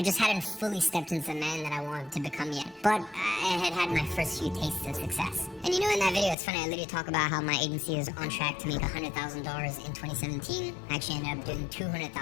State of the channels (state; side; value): drops out; right; at 6.4 s